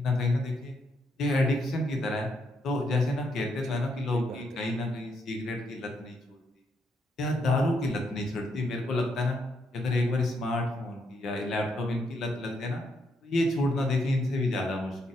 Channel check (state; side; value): normal; both; correlation 0.76